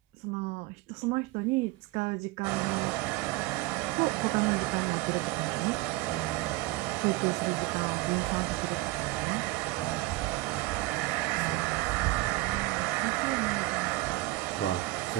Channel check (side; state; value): left; quieter; 19.9 dB